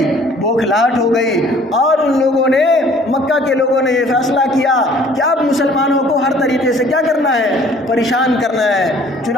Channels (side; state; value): both; normal; correlation 0.55